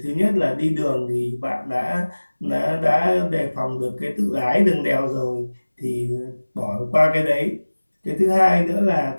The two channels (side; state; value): both; inverted; correlation -1.00